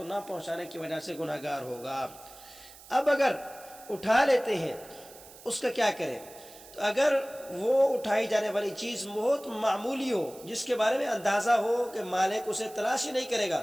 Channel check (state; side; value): noise; right; hiss, 19 dB below the sound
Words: نہ پہنچانے کی وجہ سے گناہ گار ہوگا۔ اب اگر اٹھا لیتے ہیں، اس کا کیا کریں؟ تو اگر وہ اٹھائی جانے والی چیز بہت معمولی ہو، جس کے بارے میں اندازہ ہو کہ مالک اسے تلاش ہی نہیں کرے گا،